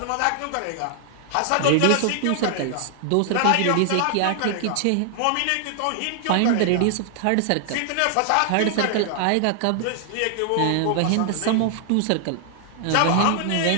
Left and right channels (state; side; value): different; both; correlation 0.00